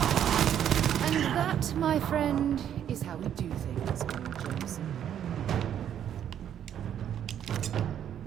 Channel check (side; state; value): left; quieter; 9.8 dB